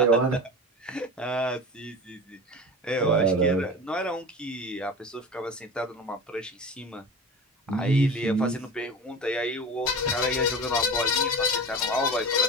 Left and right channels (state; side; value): normal; both; correlation 0.31